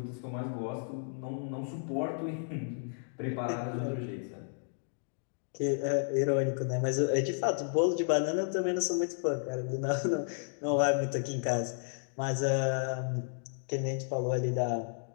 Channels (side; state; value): right; silent; digital silence